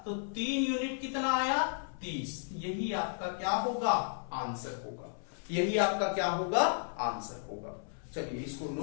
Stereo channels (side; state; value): right; silent; 55 dB below the other